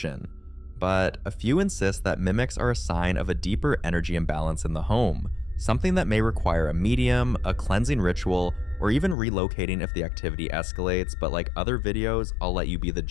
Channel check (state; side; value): drops out; right; at 9.2 s